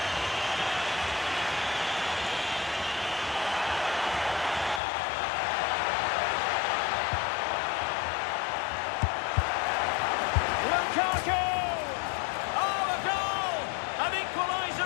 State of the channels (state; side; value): drops out; right; at 4.8 s